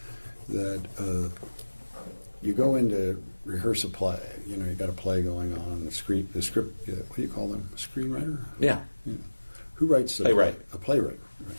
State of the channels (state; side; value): inverted; both; correlation -1.00